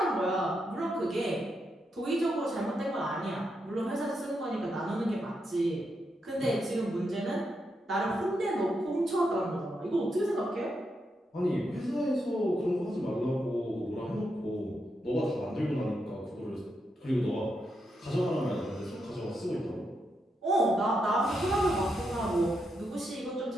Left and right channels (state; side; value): normal; both; correlation 0.83